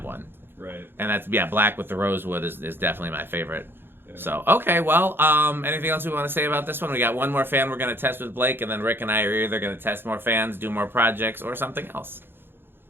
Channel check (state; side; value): late; left; 0.10 ms